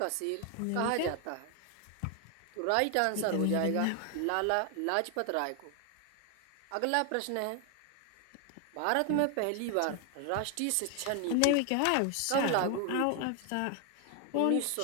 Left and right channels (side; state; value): both; different; correlation 0.00